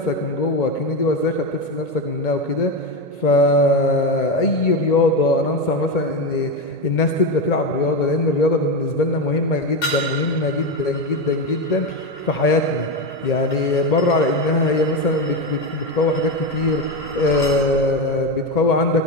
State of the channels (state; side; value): late; right; 1.8 ms